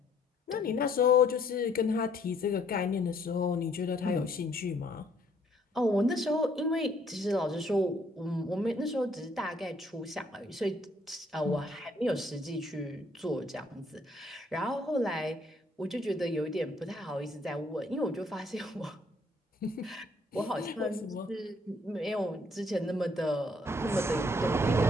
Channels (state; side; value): normal; both; correlation 0.65